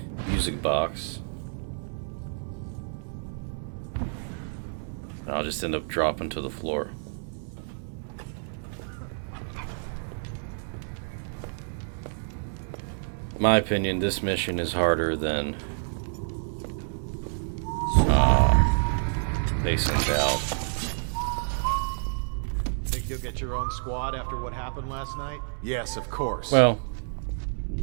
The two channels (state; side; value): silent; left; 59 dB below the other